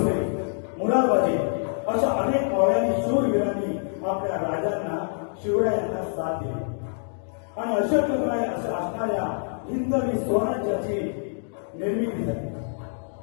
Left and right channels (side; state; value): right; silent; digital silence